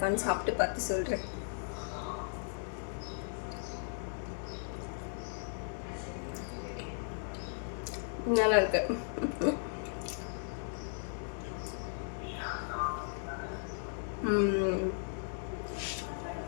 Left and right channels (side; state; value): right; silent; digital silence